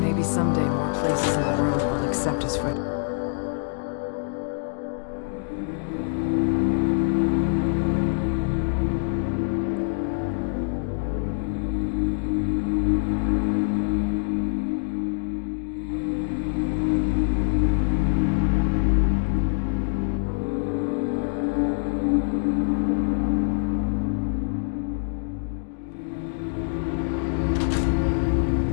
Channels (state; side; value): silent; right; digital silence